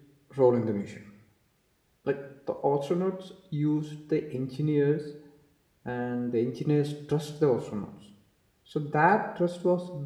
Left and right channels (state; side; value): identical; both; correlation 1.00